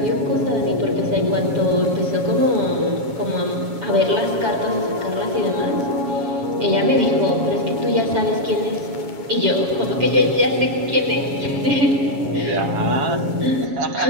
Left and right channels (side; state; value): left; late; 7.2 ms